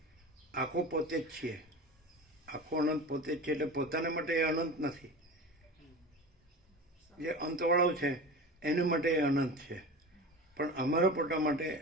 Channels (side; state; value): both; normal; correlation 0.31